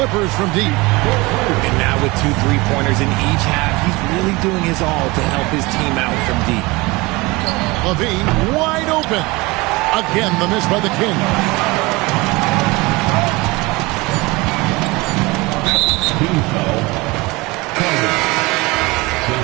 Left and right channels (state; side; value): quieter; left; 23.4 dB